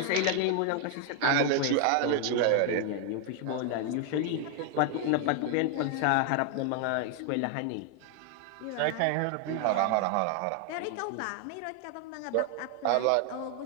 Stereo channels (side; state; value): both; different; correlation 0.00